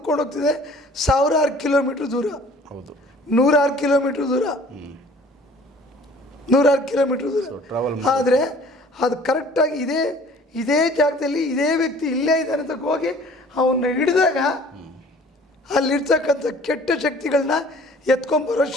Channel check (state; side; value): normal; both; correlation 0.51